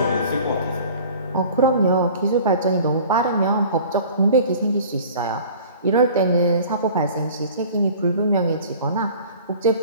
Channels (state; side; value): inverted; both; correlation -0.45